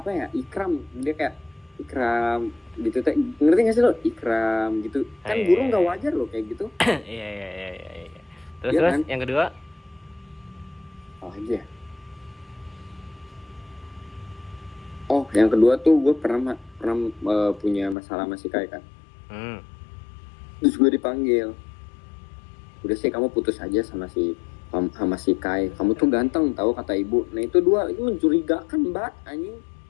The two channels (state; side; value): drops out; right; at 17.9 s